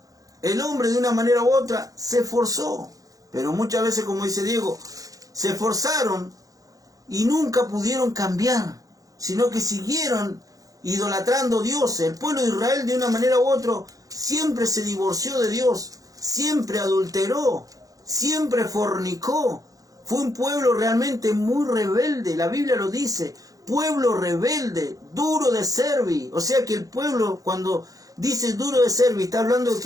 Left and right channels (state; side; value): late; left; 0.17 ms